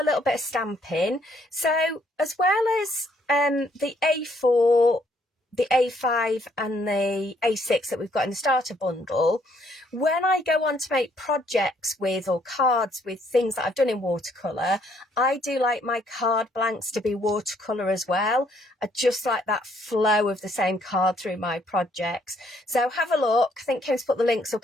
little bit of stamping. So as well as the A4, the A5 and the A6 that we've got in the starter bundle, when I go on to make projects with or cards with things that I've done in watercolour, I do like my card blanks to be watercolour as well. I just like that flow of the same card through my projects. So have a look. I think Kim's put the links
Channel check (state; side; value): normal; both; correlation 0.68